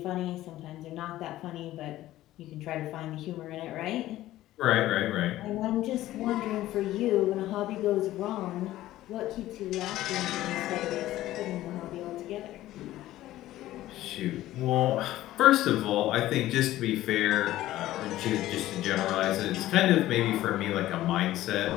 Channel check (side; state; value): right; quieter; 15.0 dB